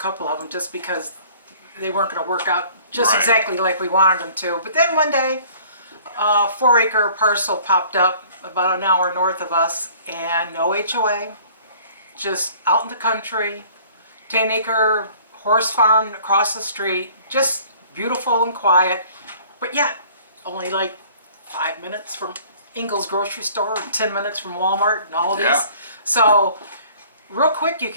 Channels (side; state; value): both; inverted; correlation -0.52